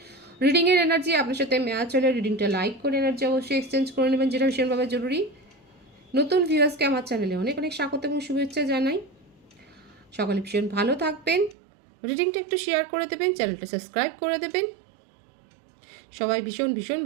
রিডিংয়ের এনার্জি আপনার সাথে ম্যাচ হলে রিডিংটা লাইক করে এনার্জি অবশ্যই এক্সচেঞ্জ করে নেবেন, যেটা ভীষণভাবে জরুরি। নতুন ভিউয়ার্সকে আমার চ্যানেলে অনেক অনেক স্বাগত এবং শুভেচ্ছা জানাই। সকলে ভীষণ ভালো থাকবেন, রিডিংটা একটু শেয়ার করে দেবেন, চ্যানেলটা সাবস্ক্রাইব করে দেবেন। সবাই ভীষণ ভীষণ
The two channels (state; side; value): drops out; left; at 11.6 s